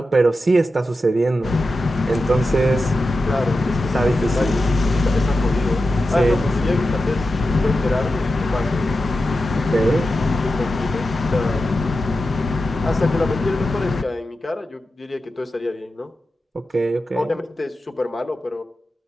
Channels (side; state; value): both; normal; correlation 0.91